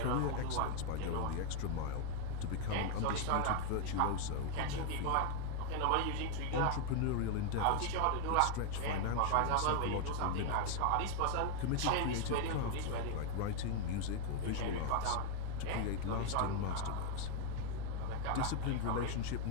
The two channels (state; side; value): different; both; correlation 0.00